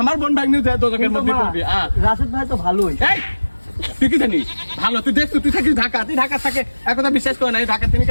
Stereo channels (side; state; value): both; inverted; correlation -1.00